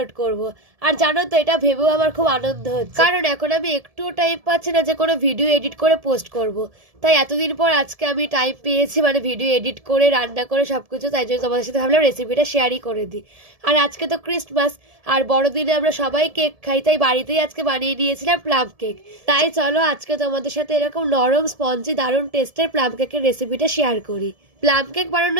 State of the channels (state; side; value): late; left; 1.7 ms